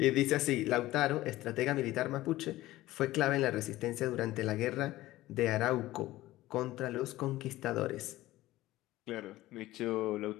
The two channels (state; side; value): quieter; right; 16.7 dB